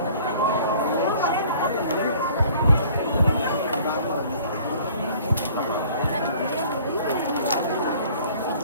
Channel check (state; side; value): inverted; both; correlation -0.52